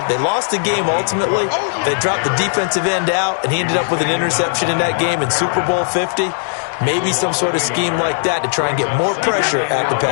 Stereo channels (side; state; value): right; silent; digital silence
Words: They lost the game ultimately. They dropped the defensive end out, and he ended up with an interception in that game in Super Bowl 50. Maybe some sort of scheme like that to try and get more pressure at the